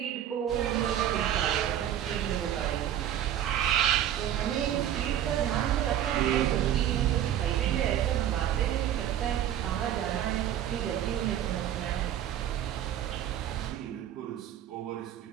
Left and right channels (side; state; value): left; quieter; 11.0 dB